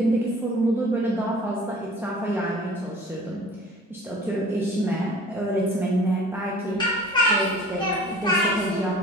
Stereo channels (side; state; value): both; normal; correlation 0.46